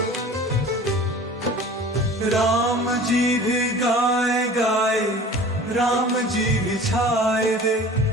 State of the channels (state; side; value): normal; both; correlation 0.43